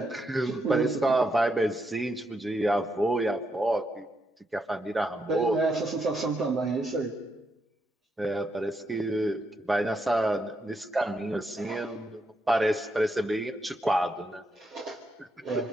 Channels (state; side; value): normal; both; correlation 0.80